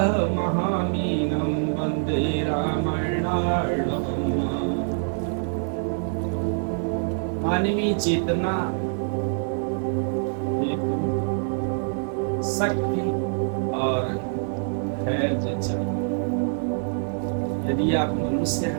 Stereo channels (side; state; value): left; silent; digital silence